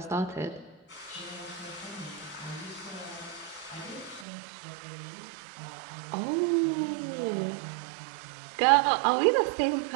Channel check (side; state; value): left; drops out; at 4.2 s